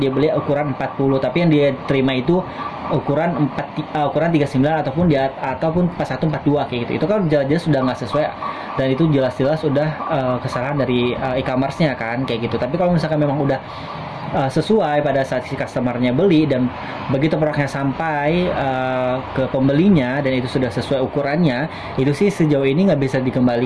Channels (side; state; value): both; identical; correlation 1.00